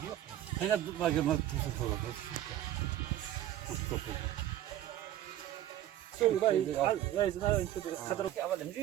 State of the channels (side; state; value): left; quieter; 12.8 dB